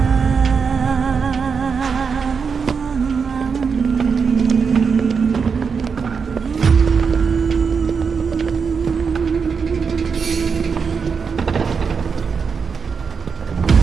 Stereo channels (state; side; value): quieter; left; 5.8 dB